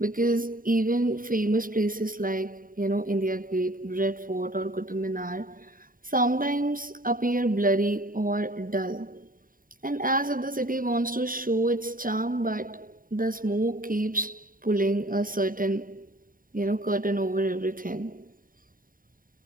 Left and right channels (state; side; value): late; left; 0.41 ms